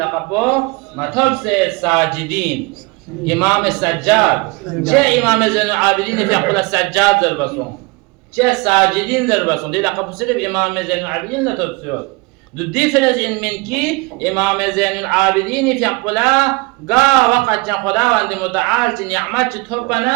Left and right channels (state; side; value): quieter; left; 26.3 dB